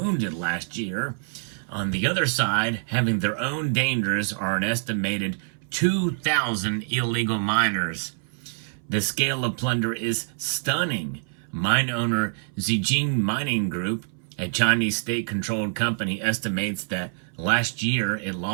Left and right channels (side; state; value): left; silent; 61 dB below the other